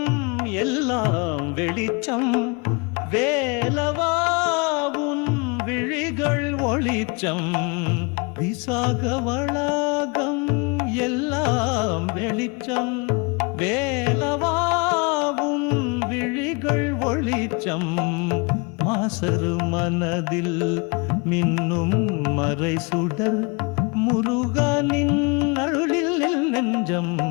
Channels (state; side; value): quieter; right; 30.2 dB